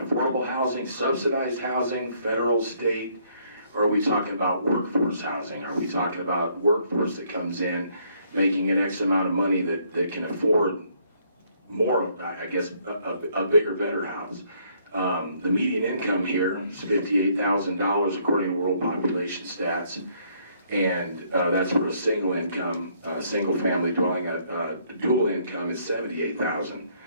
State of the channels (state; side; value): inverted; both; correlation -0.67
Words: affordable housing, subsidized housing, federal, state, or are we talking about workforce housing? Are we talking about workforce that comes in making an X amount of money that can afford more, I guess, a bigger, better house? The median income here is $58,000 according to World Population Stats. And that's for a single income, single family dwelling. Dual income is $78,000.